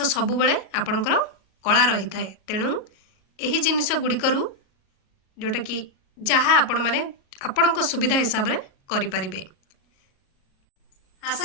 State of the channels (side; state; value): right; late; 37 ms